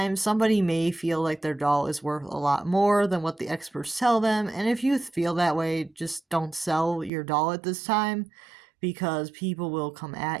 somebody may feel like their doll is worth a lot more than what the experts tell them. And if you feel that way, just don't sell your doll at this time, because people will come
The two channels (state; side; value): drops out; left; at 7.1 s